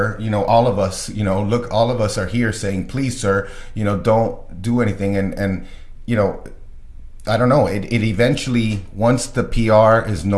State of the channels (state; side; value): identical; both; correlation 1.00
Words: all of us, look, all of us are here saying, please, sir, don't do anything. And I don't know, it eventually, once the PR is